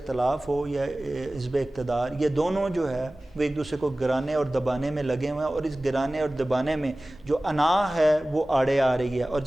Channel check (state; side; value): normal; both; correlation 0.97